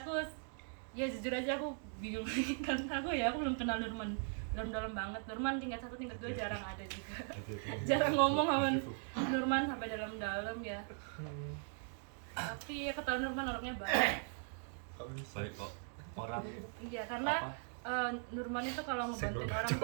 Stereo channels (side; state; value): left; silent; 51 dB below the other